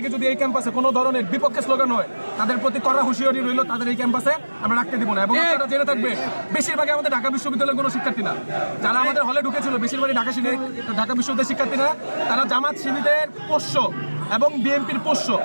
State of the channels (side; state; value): both; inverted; correlation -1.00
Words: যদি এই ক্যাম্পাসে কোনো ধরনের বিপক্ষে স্লোগান হয় তাদের প্রতি কড়া হুঁশিয়ারি রইল, তাদের এই ক্যাম্পাসে আমরা রাখতে দিব না। এবং আপনারা জেনে থাকবে বেশিরভাগই আমাদের ঢাকা বিশ্ববিদ্যালয়ের কোনো শিক্ষার্থী না, যারা আমাদের হলে ঢুকেছিল বেশিরভাগই ঢাকা বিশ্ববিদ্যালয়ের শিক্ষার্থী না, তারা জামাত শিবিরের পোষ্য এবং বিএনপির পোষ্য।